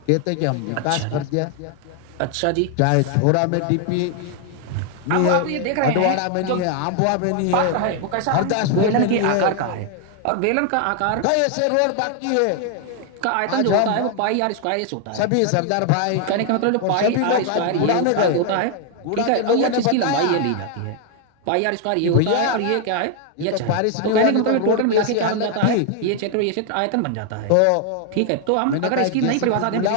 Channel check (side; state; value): both; different; correlation 0.00